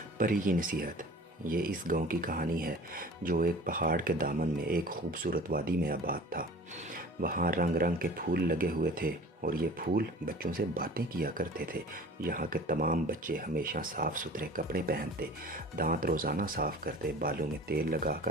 پری کی نصیحت۔ یہ اس گاؤں کی کہانی ہے جو ایک پہاڑ کے دامن میں ایک خوبصورت وادی میں آباد تھا۔ وہاں رنگ رنگ کے پھول لگے ہوئے تھے اور یہ پھول بچوں سے باتیں کیا کرتے تھے۔ یہاں کے تمام بچے ہمیشہ صاف ستھرے کپڑے پہنتے، دانت روزانہ صاف کرتے، بالوں میں تیل لگا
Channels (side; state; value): both; normal; correlation 0.43